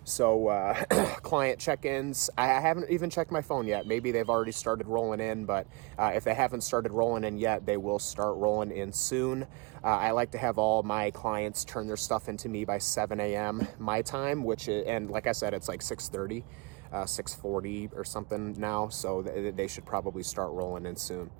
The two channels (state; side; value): quieter; left; 27.9 dB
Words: So client check-ins, I haven't even checked my phone yet. Maybe they've already started rolling in, but if they haven't started rolling in yet, they will start rolling in soon. I like to have all my clients turn their stuff into me by 7 a.m. my time, and like I said, it's like 6:30. 6:40 or something now, so they should probably start rolling in soon.